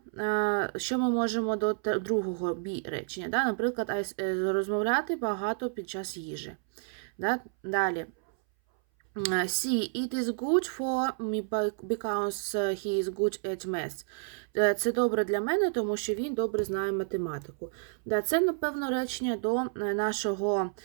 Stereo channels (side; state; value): left; silent; 58 dB below the other